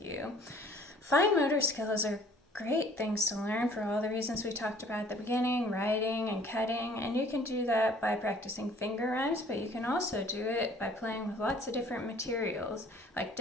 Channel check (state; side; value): normal; both; correlation 0.54